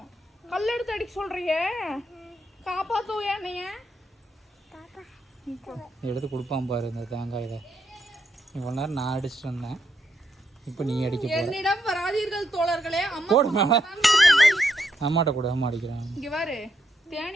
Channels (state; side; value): normal; both; correlation 0.79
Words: கல் எடுத்து அடிக்க சொல்றியே, காப்பாத்து என்னைய. எடுத்து கொடுப்பான் பாரு இந்த தேங்காயில. இவ்வளவு நேரம் நான் அடிச்சுட்டு வந்தேன், இப்போ நீ அடிக்க போற. என்னிடம் வராதீர்கள் தோழர்களே. அம்மாட்ட கூட அம்மா அடிக்கிறான். இங்க பாரு,